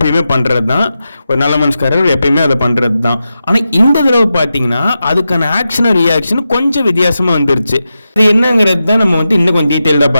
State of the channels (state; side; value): inverted; both; correlation -0.90